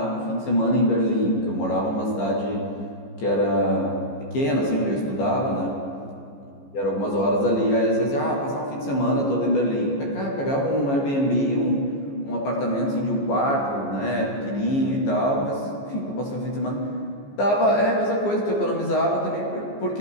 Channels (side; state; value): right; late; 14 ms